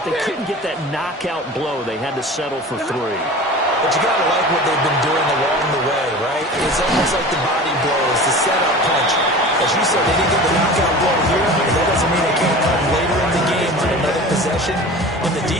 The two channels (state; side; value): normal; both; correlation 0.37